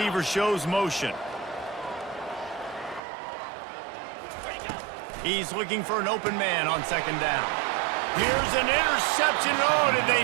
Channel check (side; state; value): left; drops out; at 3.0 s